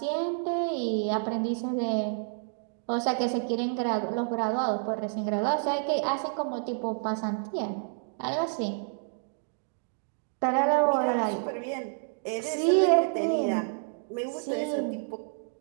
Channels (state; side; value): silent; left; digital silence